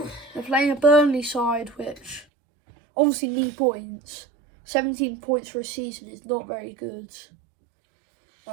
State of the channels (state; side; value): drops out; left; at 2.2 s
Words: they're playing a Burnley side which obviously need points. 17 points for a season is not very good.